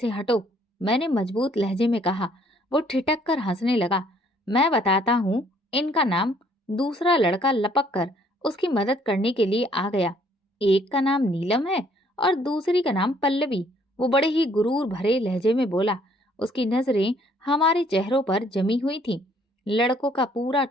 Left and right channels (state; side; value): normal; both; correlation 0.63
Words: हटो, मैंने मजबूत लहजे में कहा। वो ठिठक कर हंसने लगा। मैं बताता हूँ इनका नाम। दूसरा लड़का लपक कर उसकी मदद करने के लिए आ गया। एक का नाम नीलम है और दूसरी का नाम पल्लवी। वो बड़े ही गुरूर भरे लहजे में बोला। उसकी नजरें हमारे चेहरों पर जमी हुई थीं। लड़कों का पूरा